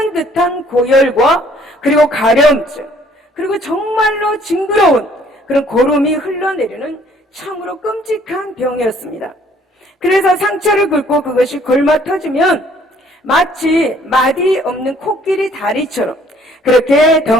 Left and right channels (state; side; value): normal; both; correlation 0.60